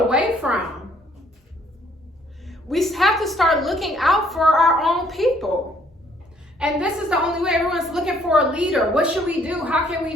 from. We have to start looking out for our own people. And this is the only way. Everyone's looking for a leader. What should we do? How can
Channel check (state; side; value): normal; both; correlation 0.64